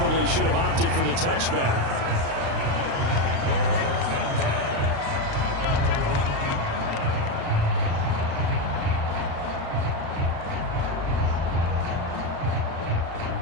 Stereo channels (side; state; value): left; late; 36 ms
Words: should have opted for the touchback.